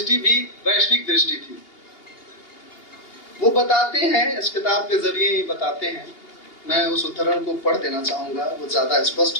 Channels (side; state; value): right; late; 2.8 ms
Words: भी वैश्विक दृष्टि थी। वो बताते हैं, इस किताब के जरिए ही बताते हैं, मैं उस उद्धरण को पढ़ देना चाहूंगा, वो ज्यादा